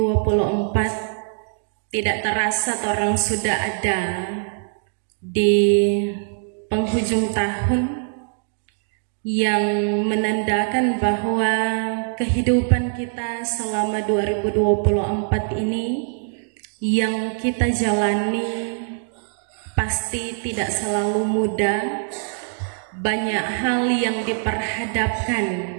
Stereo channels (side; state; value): left; silent; digital silence